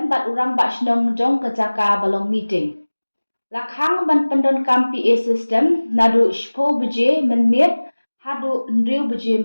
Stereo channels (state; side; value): inverted; both; correlation -1.00